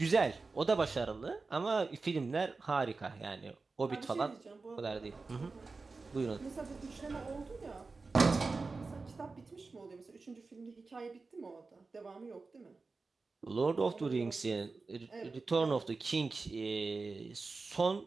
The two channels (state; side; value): quieter; left; 4.0 dB